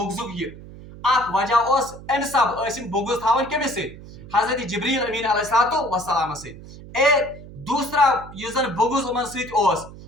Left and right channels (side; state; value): right; noise; hum, 16 dB below the sound